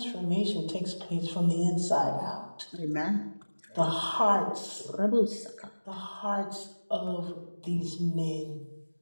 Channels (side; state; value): both; inverted; correlation -1.00